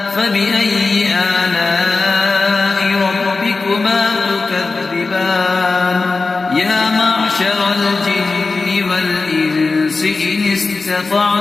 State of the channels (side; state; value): right; quieter; 3.9 dB